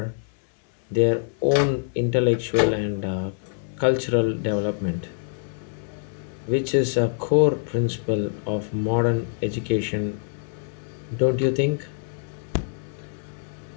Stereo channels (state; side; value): silent; right; 62 dB below the other